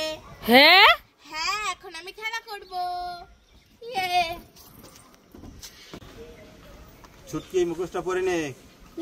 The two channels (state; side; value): identical; both; correlation 1.00